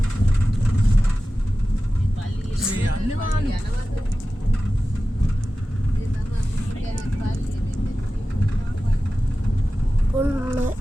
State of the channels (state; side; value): normal; both; correlation 0.95